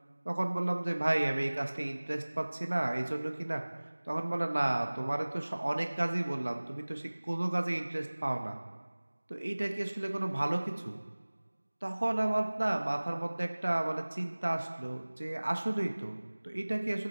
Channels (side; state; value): both; inverted; correlation -1.00